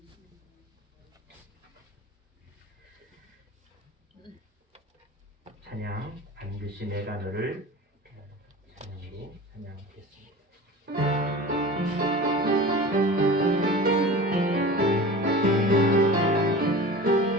찬양, 반드시 내가 너를 찬양으로 찬양하겠습니다.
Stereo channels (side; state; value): both; normal; correlation 0.35